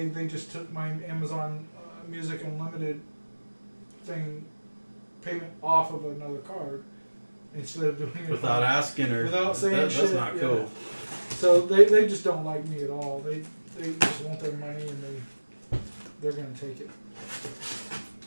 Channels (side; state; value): both; inverted; correlation -1.00